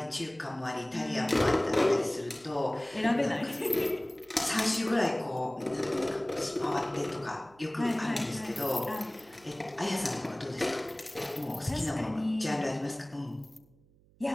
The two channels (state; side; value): noise; right; hum, 30 dB below the sound